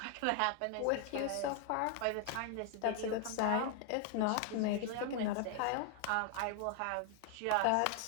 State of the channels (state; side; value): different; both; correlation 0.00